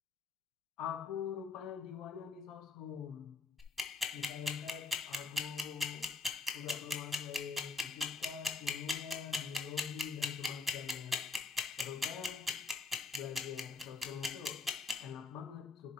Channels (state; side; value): quieter; right; 4.0 dB